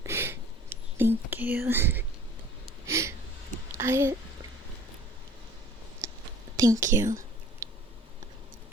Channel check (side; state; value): both; normal; correlation 0.50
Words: Thank you. Thank you.